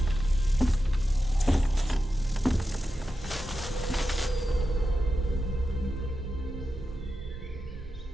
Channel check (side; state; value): both; normal; correlation 0.90